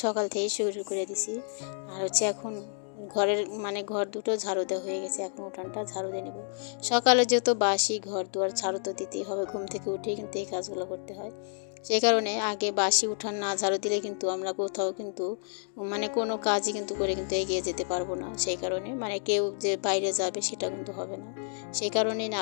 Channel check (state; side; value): silent; right; 58 dB below the other